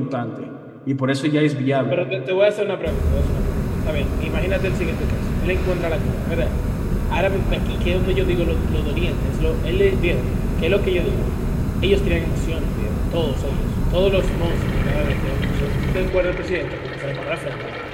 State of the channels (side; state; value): both; identical; correlation 1.00